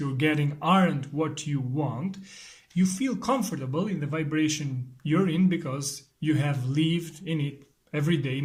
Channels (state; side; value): identical; both; correlation 1.00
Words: getting aren't what you want, you feel comfortable in the vibration you're in because you have lived in it every day,